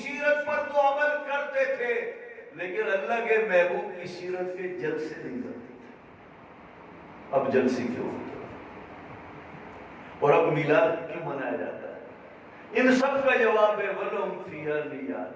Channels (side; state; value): both; identical; correlation 1.00